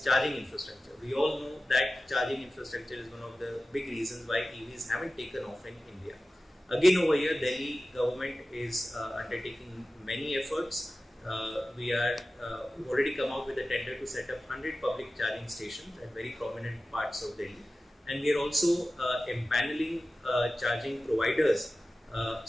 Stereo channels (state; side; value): normal; both; correlation 0.95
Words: charging infrastructure. We all know that charging infrastructure is one of the big reasons why EVs haven't taken off in India. Again, over here, Delhi government is undertaking many efforts. We've already come out with a tender to set up 100 public charging stations at very prominent parts of Delhi. And we are also empaneling charging providers